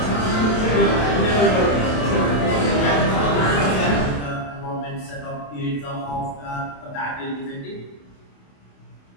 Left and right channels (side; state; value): right; late; 28 ms